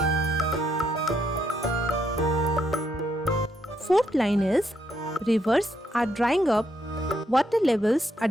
Fourth line is, rivers are drying up, water levels are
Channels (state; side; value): normal; both; correlation 0.76